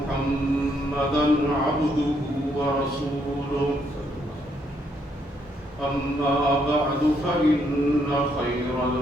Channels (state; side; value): normal; both; correlation 0.73